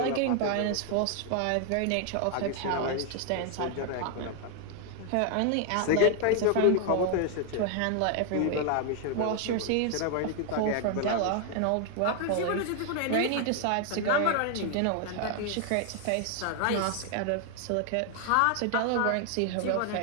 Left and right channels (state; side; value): different; both; correlation 0.00